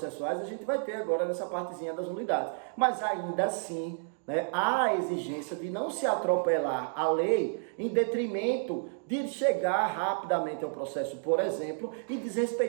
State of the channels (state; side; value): silent; left; digital silence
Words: a gente vai ter agora nessa partezinha das nulidades. Mas, ainda assim, né, há a exigência de não se atropelar a lei em detrimento de chegar rapidamente ao processo, por exemplo, e